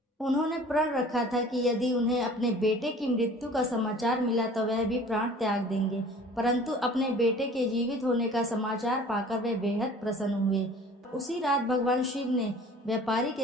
उन्होंने प्रण रखा था कि यदि उन्हें अपने बेटे की मृत्यु का समाचार मिला तो वह भी प्राण त्याग देंगे, परंतु अपने बेटे के जीवित होने का समाचार पाकर वे बेहद प्रसन्न हुए। उसी रात भगवान शिव ने व्यापारी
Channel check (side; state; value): both; normal; correlation 0.47